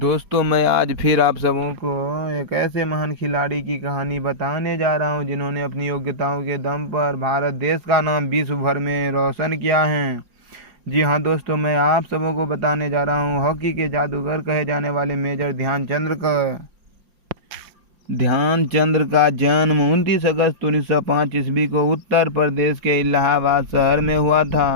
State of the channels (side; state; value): left; late; 4.9 ms